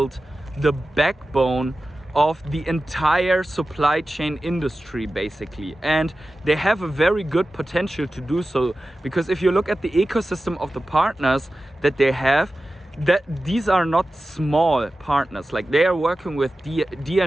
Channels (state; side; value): normal; both; correlation 0.94